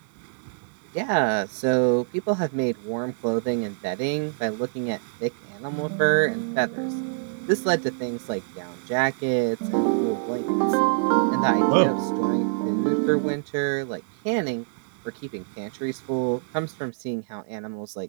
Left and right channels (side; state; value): left; silent; digital silence